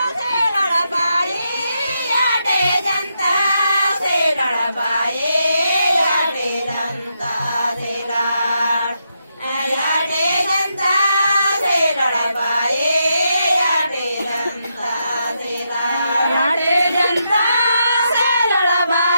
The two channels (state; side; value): inverted; both; correlation -0.82